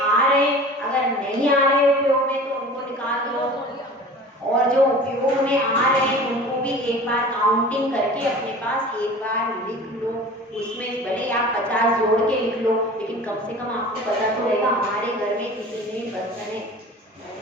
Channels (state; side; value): normal; both; correlation 0.41